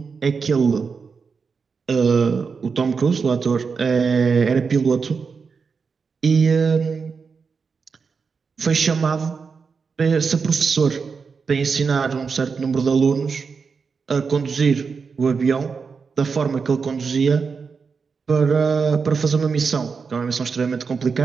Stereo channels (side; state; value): left; quieter; 5.3 dB